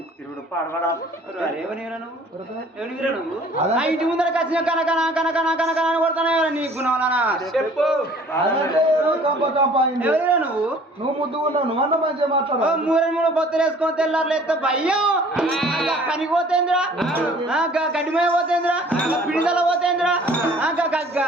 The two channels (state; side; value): normal; both; correlation 0.52